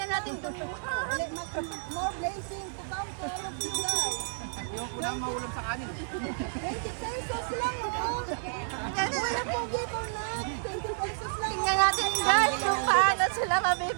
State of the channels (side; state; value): left; silent; digital silence